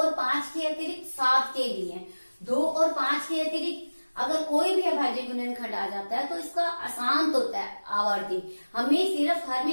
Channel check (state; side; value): inverted; both; correlation -1.00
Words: 5 के अतिरिक्त 7 के भी हैं। 2 और 5 के अतिरिक्त अगर कोई भी अभाज्य गुणनखंड आ जाता है तो इसका अशांत होता है आवर्ती। हमें सिर्फ हर